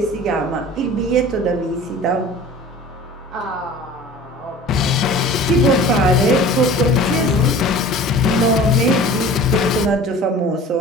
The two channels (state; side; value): normal; both; correlation 0.42